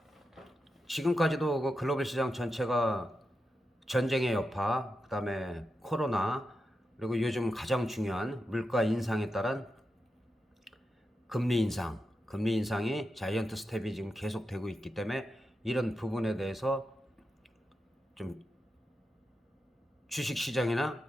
지금까지도 그 글로벌 시장 전체가 전쟁의 여파, 그 다음에 코로나, 그리고 요즘 가장 중요한 물가 인상에 따른 금리 인상이 자이언트 스텝이 지금 계속되고 있기 때문에 이런 부분에 대해서 좀 주식 시장이나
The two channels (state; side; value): normal; both; correlation 0.89